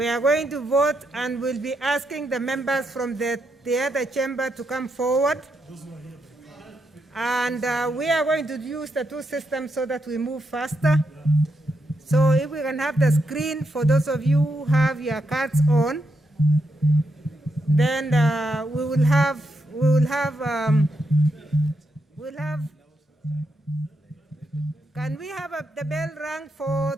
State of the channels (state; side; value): normal; both; correlation 0.82